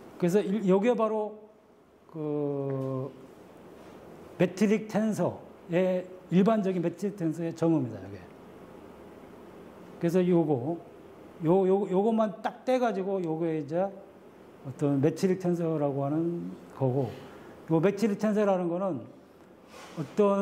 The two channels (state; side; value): identical; both; correlation 1.00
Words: 그래서 요게 바로 그 매트릭 텐서의 일반적인 매트릭 텐서의 정의입니다. 요게. 그래서 요것만 딱 떼가지고 요게 이제 어떤 매트릭 텐서라고 하는 거고, 요 매트릭 텐서라는 거는